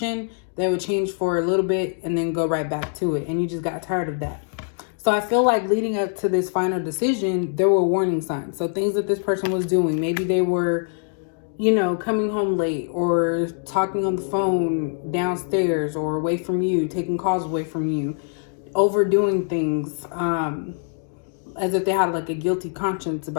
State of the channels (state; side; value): silent; right; digital silence